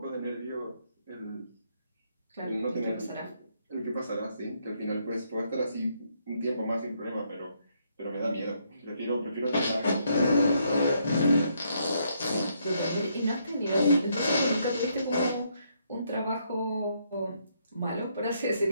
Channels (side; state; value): both; inverted; correlation -0.74